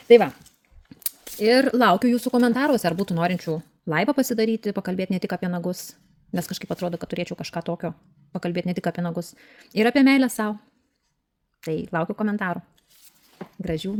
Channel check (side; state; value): both; identical; correlation 1.00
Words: Tai va, ir laukiu jūsų komentaruose, ar būtų norinčių laivą pasidaryti, pakalbėti ne tik apie nagus, nes kažkaip atrodo, kad turėčiau kažką tokio, pakalbėti ne tik apie nagus, ir apie meilę savo. Tai laukiu komentarų. Gražių